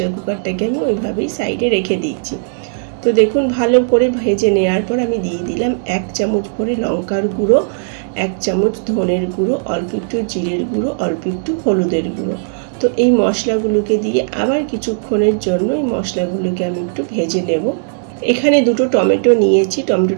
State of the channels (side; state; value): left; silent; digital silence